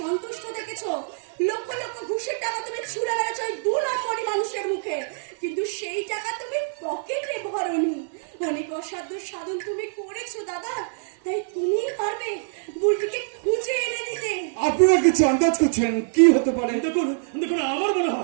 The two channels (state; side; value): silent; left; digital silence